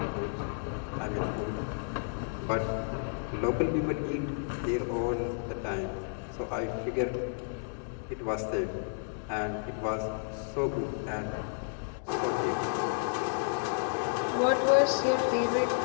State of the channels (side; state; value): right; silent; digital silence